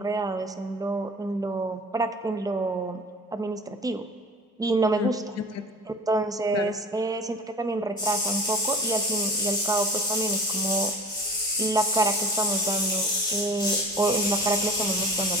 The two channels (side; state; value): both; normal; correlation 0.40